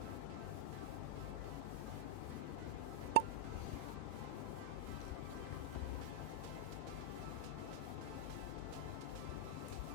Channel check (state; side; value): different; both; correlation -0.01